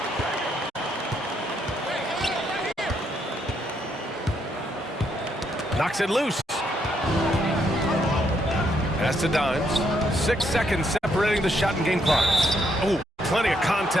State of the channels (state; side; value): normal; both; correlation 0.75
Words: Knocks it loose. Pass to Dimes. 6 seconds separating the shot and game clocks. Oh, plenty of